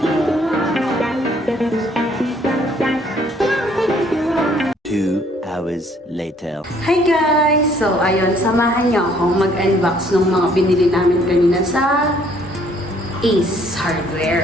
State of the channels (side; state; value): both; normal; correlation 0.62